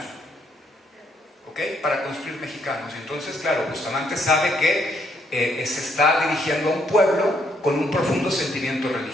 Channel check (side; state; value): both; normal; correlation 0.72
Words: ¿Ok? Para construir mexicanos. Entonces, claro, Bustamante sabe que se está dirigiendo a un pueblo con un profundo sentimiento